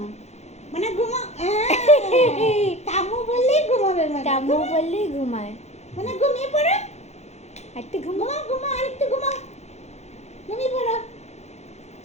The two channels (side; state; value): right; late; 0.32 ms